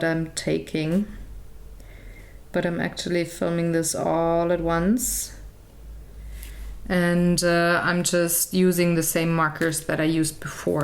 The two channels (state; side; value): identical; both; correlation 1.00